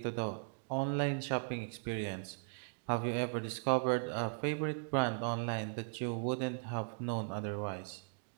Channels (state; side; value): silent; left; digital silence